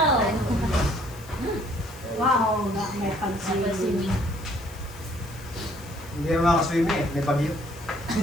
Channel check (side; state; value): left; noise; hiss, 21 dB below the sound